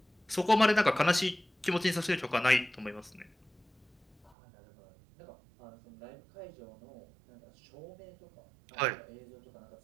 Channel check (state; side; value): drops out; left; at 4.4 s